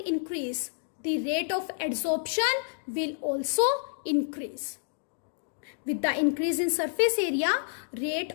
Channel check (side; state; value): right; silent; digital silence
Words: increase, the rate of adsorption will also increase. With the increase in surface area, rate